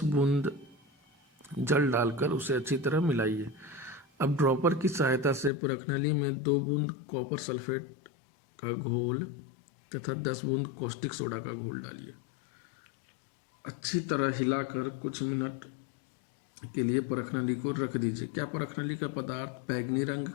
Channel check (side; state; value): right; drops out; at 5.5 s